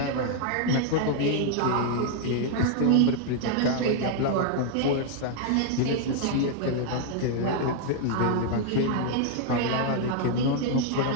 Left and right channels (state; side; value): different; both; correlation 0.00